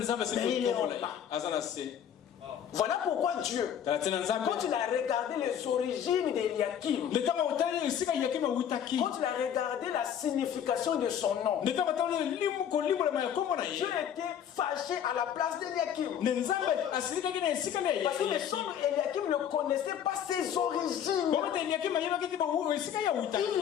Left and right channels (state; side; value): quieter; right; 9.2 dB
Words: il n'est pas. Voilà pourquoi Dieu, quand il a regardé les origines d'Eliakim, quand il a regardé la signification de son nom, Dieu était fâché à la place d'Eliakim. Parce que les gens d'Eliakim ne connaissaient pas ses origines. Il vient